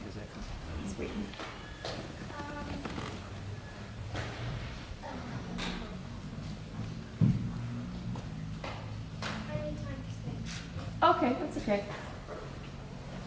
He's waiting. Okay, that's okay.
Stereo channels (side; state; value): both; identical; correlation 1.00